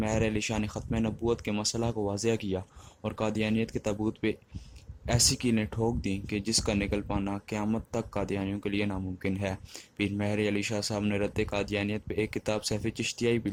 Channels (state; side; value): identical; both; correlation 1.00